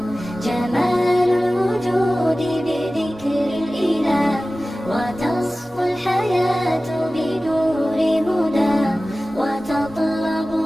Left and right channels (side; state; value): both; normal; correlation 0.96